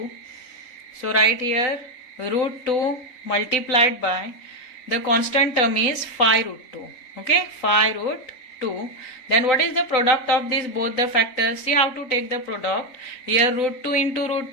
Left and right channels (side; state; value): right; late; 4.0 ms